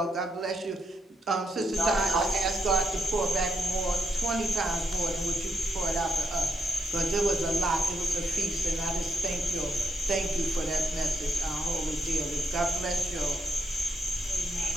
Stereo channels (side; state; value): both; normal; correlation 0.79